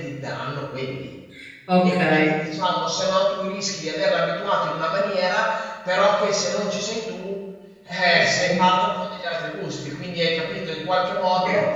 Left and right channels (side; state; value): both; identical; correlation 1.00